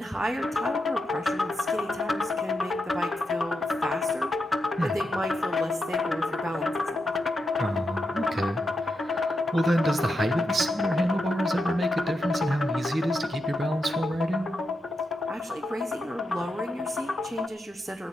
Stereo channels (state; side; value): normal; both; correlation 0.86